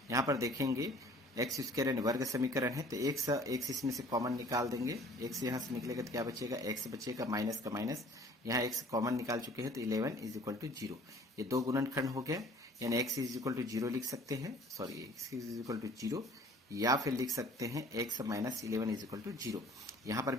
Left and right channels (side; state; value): both; normal; correlation 0.51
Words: यहाँ पर देखेंगे एक्स स्क्वायर यानी वर्ग समीकरण है, तो एक इसमें से कॉमन निकाल देंगे। एक्स यहाँ से निकलेगा तो क्या बचेगा, एक्स बचेगा, माइनस का माइनस, यहाँ एक्स कॉमन निकाल चुके हैं तो 11 इज इक्वल टू 0। ये दो गुणनखंड हो गया, यानी एक्स इज इक्वल टू 0 लिख सकते हैं, sorry x is equal to 0, या फिर लिख सकते हैं x minus 11 is equal to 0। यहाँ पर